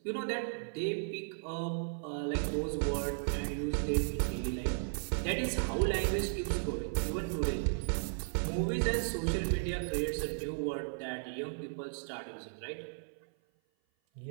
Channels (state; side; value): silent; left; 54 dB below the other